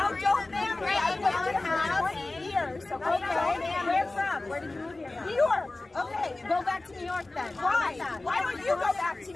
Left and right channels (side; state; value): right; quieter; 3.0 dB